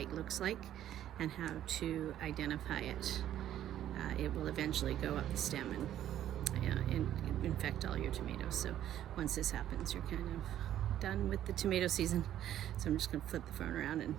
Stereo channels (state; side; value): quieter; left; 11.7 dB